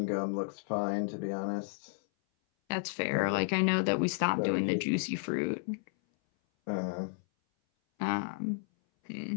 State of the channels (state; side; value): silent; right; 56 dB below the other